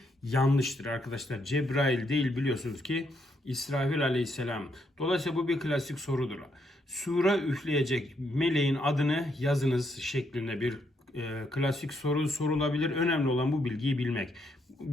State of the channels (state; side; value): normal; both; correlation 0.76